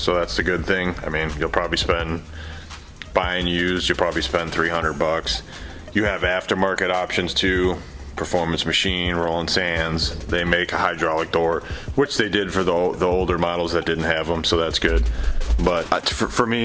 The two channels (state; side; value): identical; both; correlation 1.00